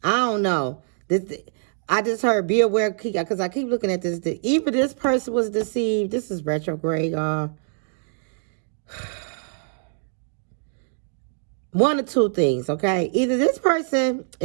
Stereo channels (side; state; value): left; silent; digital silence